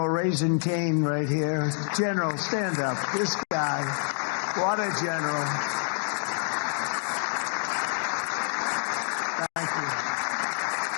Raisin Cain right here. General, stand up. This guy, what a general. Thank you.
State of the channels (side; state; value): right; silent; digital silence